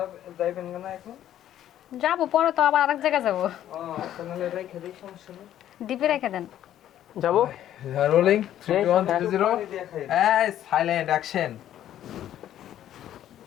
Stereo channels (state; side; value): quieter; right; 11.6 dB